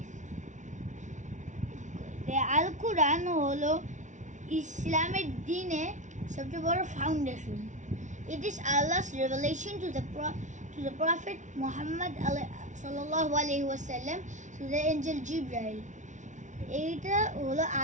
The Al-Quran holo ইসলামের দিনে সবচেয়ে বড় foundation. It is Allah's revelation to the Prophet Muhammad sallallahu alaihi wasallam to the angel Jibril. এটা হলো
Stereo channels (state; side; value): late; left; 0.36 ms